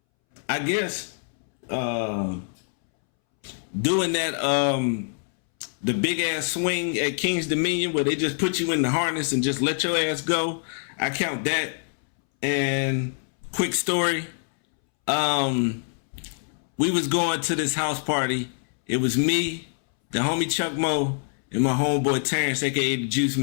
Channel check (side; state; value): right; silent; 62 dB below the other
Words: I guess doing that the big ass swing at King's Dominion where they just put you in the harness and just let your ass go. I count that. And quick story, we was going to this house party. It was me, the homie Chuck Moe, and my homeboy Terrence, aka the Juice